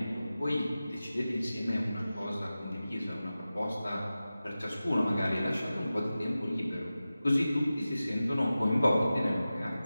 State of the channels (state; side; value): inverted; both; correlation -0.95